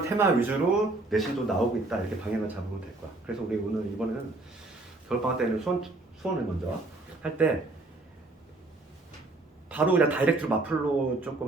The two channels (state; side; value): quieter; left; 3.0 dB